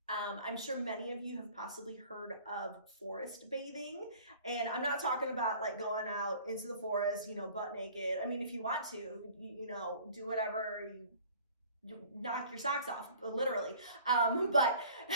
I'm sure many of you have possibly heard of forest bathing, and I'm not talking about like going out into the forest, butt naked. I mean, if you want to, do whatever, you knock your socks off, literally. But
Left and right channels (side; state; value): both; inverted; correlation -0.49